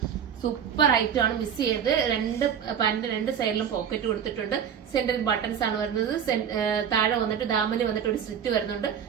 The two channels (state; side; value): quieter; left; 8.1 dB